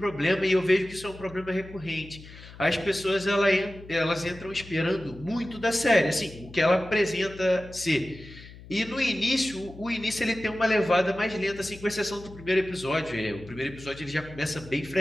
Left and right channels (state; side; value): noise; left; hum, 18 dB below the sound